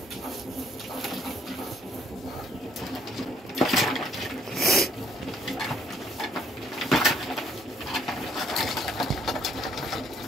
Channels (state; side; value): normal; both; correlation 0.66